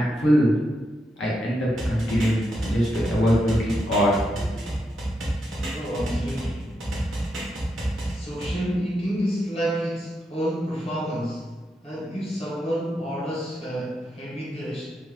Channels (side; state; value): both; normal; correlation 0.83